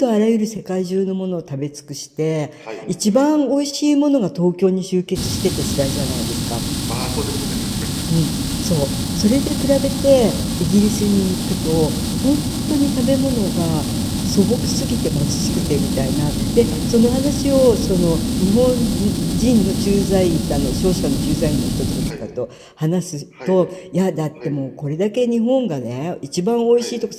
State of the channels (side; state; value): both; identical; correlation 1.00